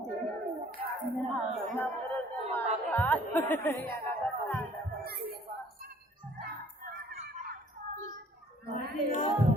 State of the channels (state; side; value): normal; both; correlation 0.57